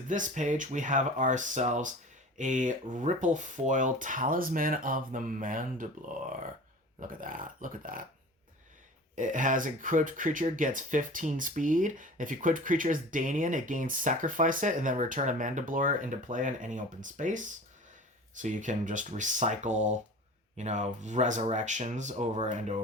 page. We have ourselves a Ripple Foil Talisman of the Mandiblor. Look at that. Look at that. It has equipped creature gets 15 speed. If equipped creature is Danian, it gains sacrifice it and then return a Mandiblor into play in any open space. So you can just recycle, resurrections over and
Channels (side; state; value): both; normal; correlation 0.39